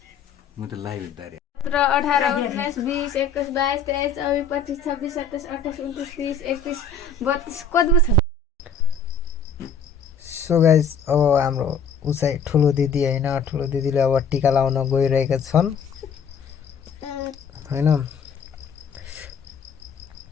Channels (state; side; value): quieter; right; 5.3 dB